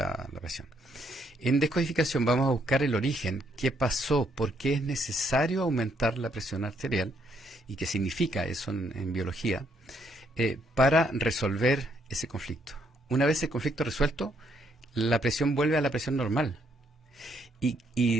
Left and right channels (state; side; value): normal; both; correlation 0.72